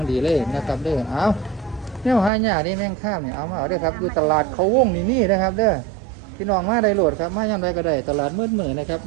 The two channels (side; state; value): left; drops out; at 2.3 s